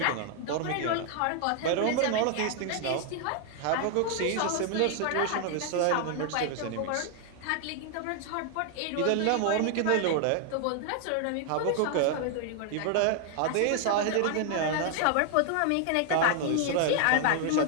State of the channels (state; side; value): different; both; correlation 0.00